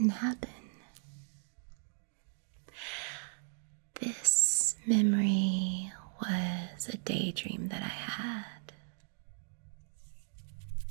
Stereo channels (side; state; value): left; silent; digital silence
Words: happen. This memory was a daydream that I had.